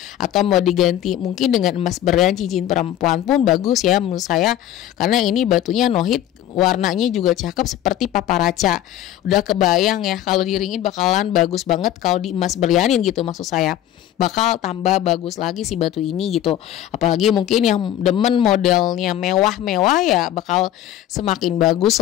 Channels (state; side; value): quieter; right; 12.1 dB